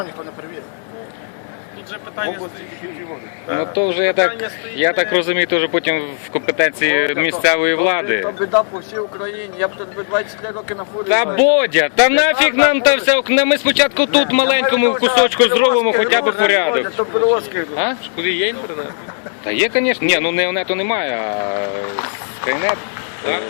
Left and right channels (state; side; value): silent; right; 67 dB below the other